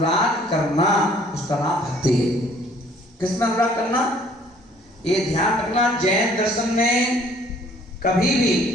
करना उसका नाम भक्ति है। किसमें अनुराग करना? ये ध्यान रखना, जैन दर्शन में कभी भी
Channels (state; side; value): normal; both; correlation 0.58